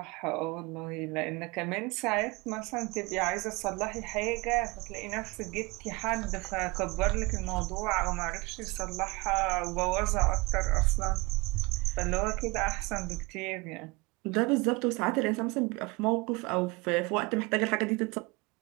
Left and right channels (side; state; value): left; quieter; 25.0 dB